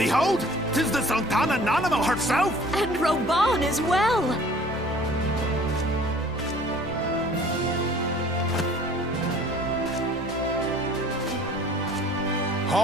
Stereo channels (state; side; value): normal; both; correlation 0.51